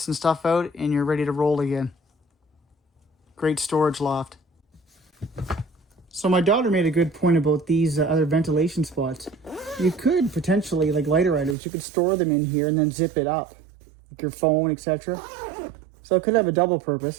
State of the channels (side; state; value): left; drops out; at 11.6 s